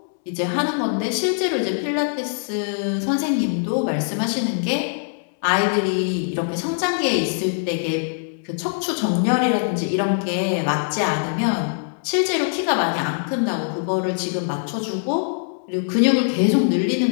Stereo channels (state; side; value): silent; right; digital silence